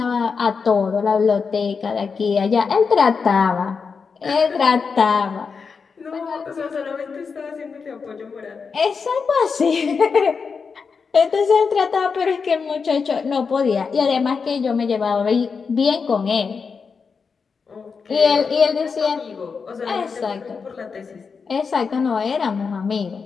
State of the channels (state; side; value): quieter; right; 5.4 dB